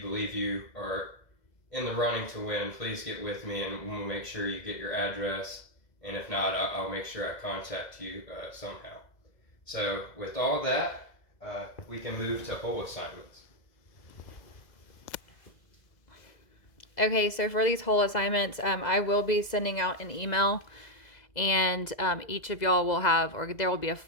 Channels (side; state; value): right; late; 2.0 ms